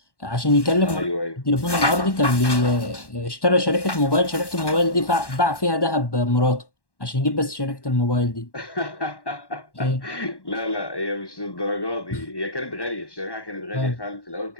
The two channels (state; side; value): late; right; 1.1 ms